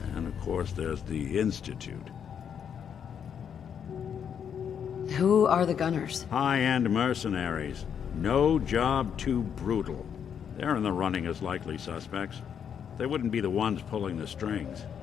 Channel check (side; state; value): right; quieter; 7.9 dB